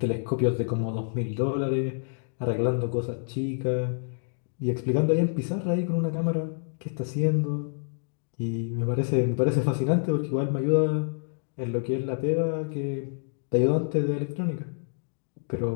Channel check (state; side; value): silent; right; digital silence